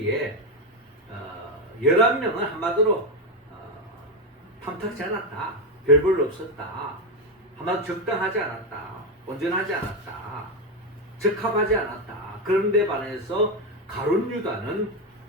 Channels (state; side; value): normal; both; correlation 0.09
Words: 11명은 한마디로 탐탁지 않았다. 별 볼 없었다. 한마디로 적당하지 않았다. 온전하지 않았다. 적합하지 않았다. 그런데 반해서 가룟 유다는